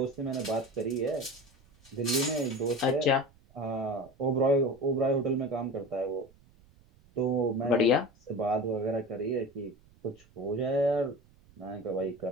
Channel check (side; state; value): right; noise; rumble, 28 dB below the sound